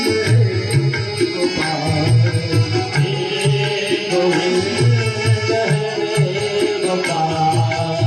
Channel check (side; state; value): both; identical; correlation 1.00